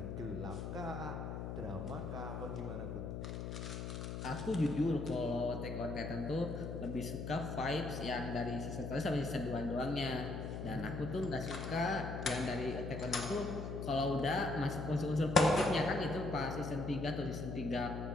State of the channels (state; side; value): noise; left; hum, 5 dB below the sound